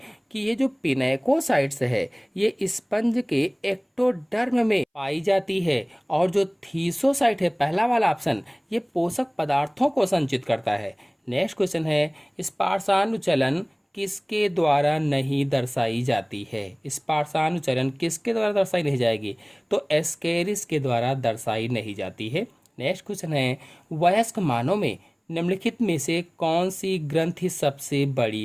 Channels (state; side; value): identical; both; correlation 1.00